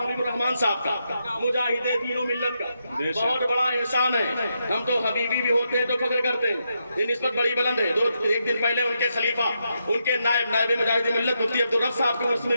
حبیب الرحمان صاحب کا, مجاہد دین و ملت کا بہت بڑا احسان ہے. ہم تو حبیبی بھی ہوتے ہیں تو فخر کرتے ہیں, یہ نسبت بڑی بلند ہے. ایک دن پہلے ان کے خلیفہ, ان کے نائب مجاہد ملت مفتی عبدالرب صاحب کے عرس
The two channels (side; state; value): both; inverted; correlation -0.83